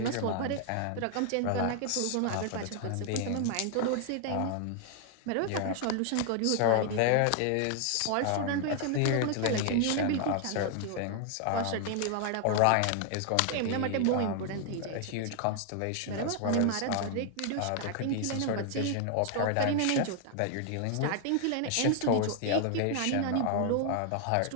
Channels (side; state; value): both; different; correlation 0.00